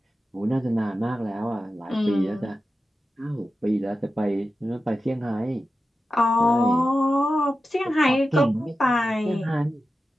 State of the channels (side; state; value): both; normal; correlation 0.92